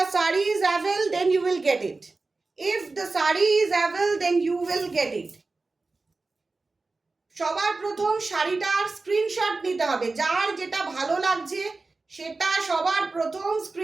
saree is available, then you will get it. If the saree is available, then you will get it. সবার প্রথম শাড়িটার screenshot নিতে হবে, যার যেটা ভালো লাগছে সেটা সবার প্রথম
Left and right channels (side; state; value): left; quieter; 3.7 dB